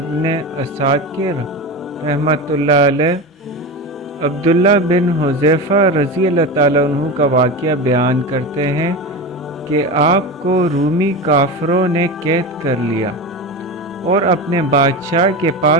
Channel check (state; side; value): normal; both; correlation 0.23